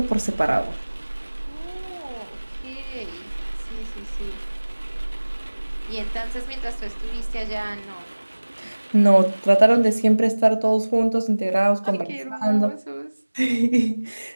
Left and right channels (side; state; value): both; inverted; correlation -1.00